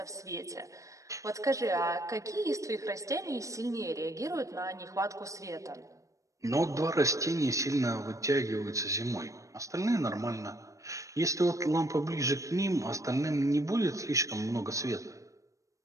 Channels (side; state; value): left; late; 0.16 ms